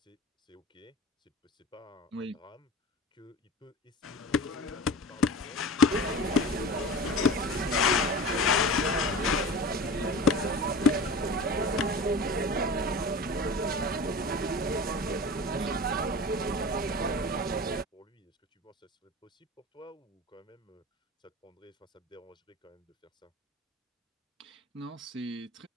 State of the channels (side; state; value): both; normal; correlation 0.34